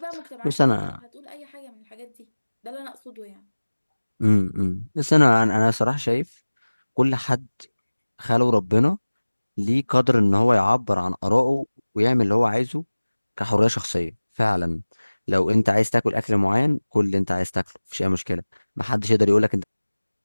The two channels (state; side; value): inverted; both; correlation -1.00